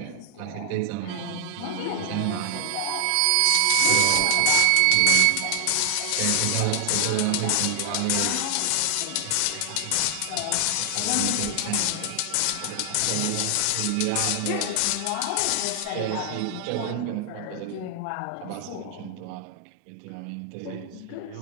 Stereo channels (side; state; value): both; different; correlation 0.00